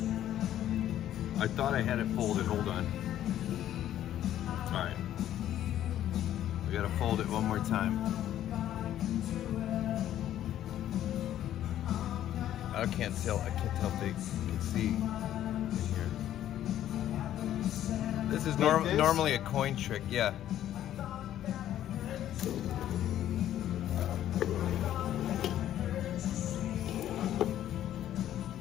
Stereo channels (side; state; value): right; quieter; 11.9 dB